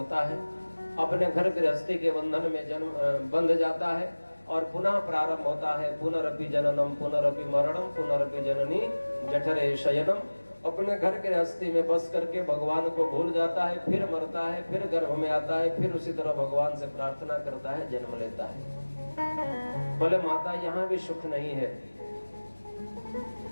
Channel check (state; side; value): inverted; both; correlation -1.00